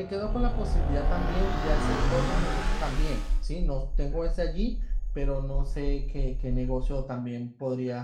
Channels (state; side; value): identical; both; correlation 1.00